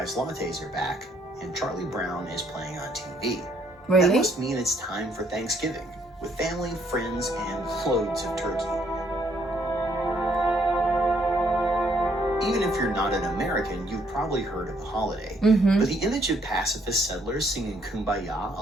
lattes are back, and Charlie Brown is playing on TV. Really? That must mean it's time for Thanksgiving, with family, friends, and loads of turkey. Even if you're not an American, you've probably heard of the holiday. But the image of pacifist settlers singing Kumbaya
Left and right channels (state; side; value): normal; both; correlation 0.68